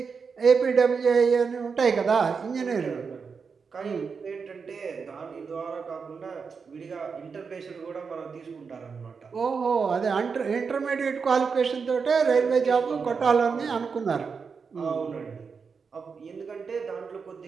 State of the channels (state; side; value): quieter; left; 5.5 dB